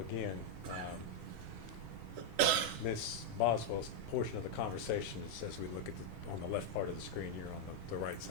again, Ms. Boswell's portion of the conversation is as we look at on the left part of the screen here on the right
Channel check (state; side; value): normal; both; correlation 0.00